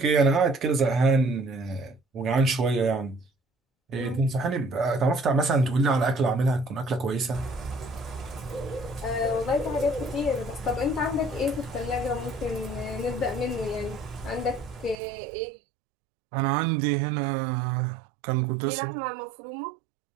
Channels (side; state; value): left; drops out; at 15.0 s